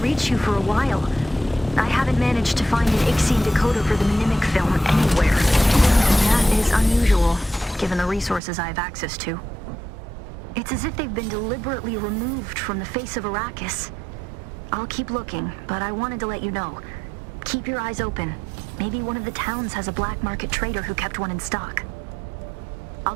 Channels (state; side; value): drops out; left; at 8.4 s